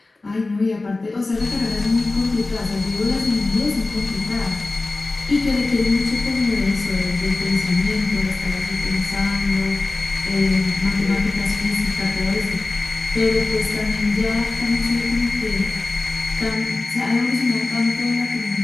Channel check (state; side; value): quieter; right; 3.3 dB